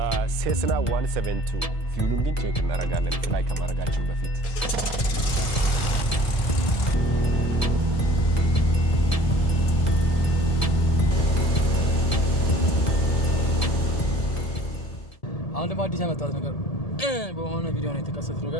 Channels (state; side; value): late; right; 1.7 ms